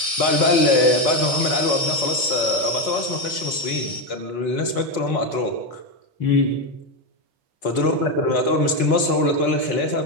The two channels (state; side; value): late; right; 4.3 ms